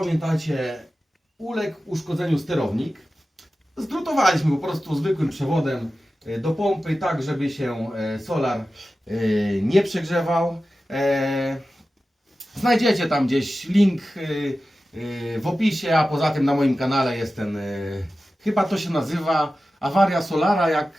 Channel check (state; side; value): normal; both; correlation 0.94